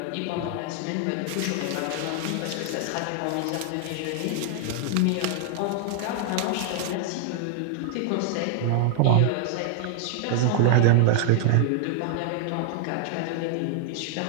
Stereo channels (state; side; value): different; both; correlation 0.00